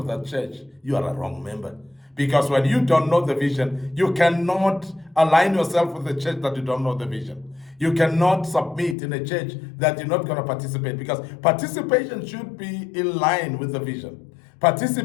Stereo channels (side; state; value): right; drops out; at 9.0 s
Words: that church. You are a wrong member. Because when you don't know the vision, you cannot align yourself with the church that you don't know the vision. You cannot submit in a church that you're not going to participate, because participation should be in line with the vision.